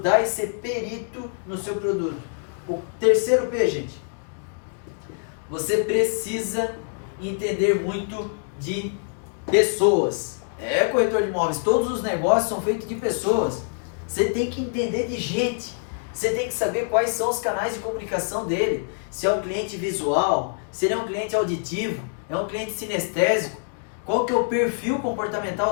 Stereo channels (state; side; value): silent; right; 62 dB below the other